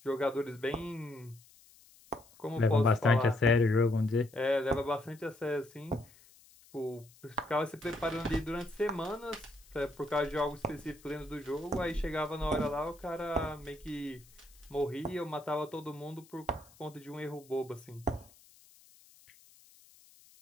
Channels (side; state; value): left; noise; hiss, 26 dB below the sound